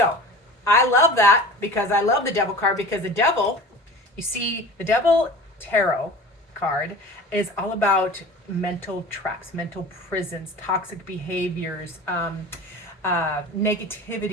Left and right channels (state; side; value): normal; both; correlation 0.37